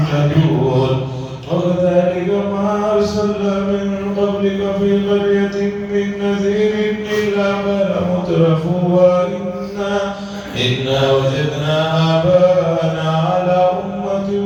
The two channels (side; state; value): both; identical; correlation 1.00